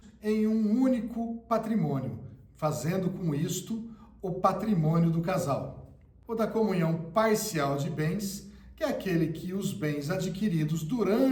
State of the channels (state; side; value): identical; both; correlation 1.00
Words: em um único patrimônio, fazendo com isto o patrimônio do casal. O da comunhão parcial de bens, que é aquele que os bens adquiridos